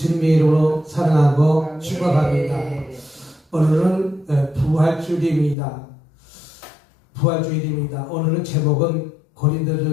주님의 이름으로 사랑하고 축복합니다. 오늘은 부활주일입니다. 오늘은 제목은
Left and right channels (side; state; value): right; drops out; at 5.6 s